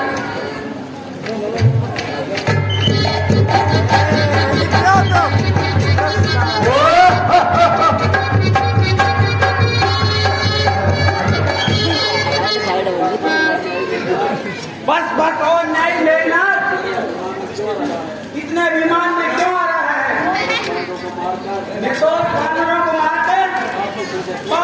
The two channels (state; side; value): identical; both; correlation 1.00